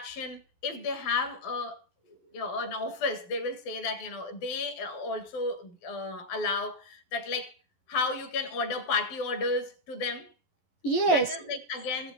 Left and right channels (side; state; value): right; late; 11 ms